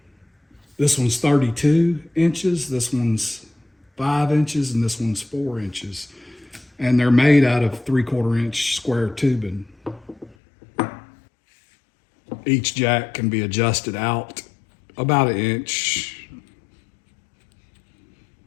This one's 32 inches, this one's 5 inches, and this one's 4 inches. And they're made out of 3/4 inch square tubing. Each jack can be adjusted out about 1 inch.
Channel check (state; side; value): drops out; right; at 10.4 s